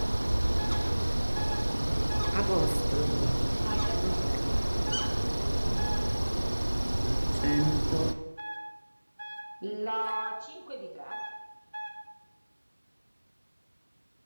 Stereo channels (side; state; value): both; inverted; correlation -1.00